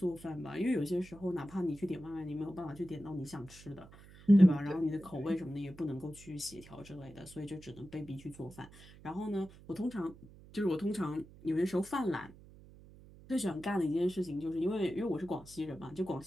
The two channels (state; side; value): noise; right; hum, 20 dB below the sound